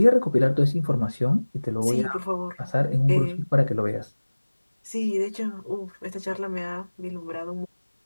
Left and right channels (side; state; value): both; inverted; correlation -1.00